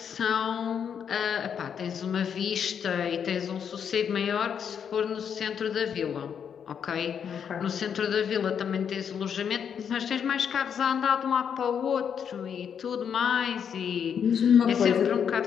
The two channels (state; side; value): quieter; right; 7.7 dB